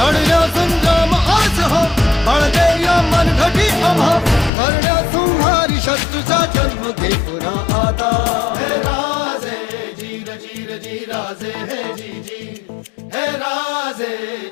संग्राम आज हो बळदे या मनघटी आम्हा करण्या संहारी शत्रूचा जन्म घे पुन्हा आता हे राजे जीर जीर जी राजे हे जी जी हे राजे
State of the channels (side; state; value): right; drops out; at 4.5 s